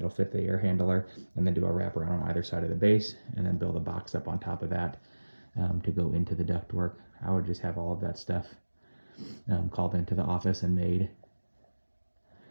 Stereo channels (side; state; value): both; inverted; correlation -1.00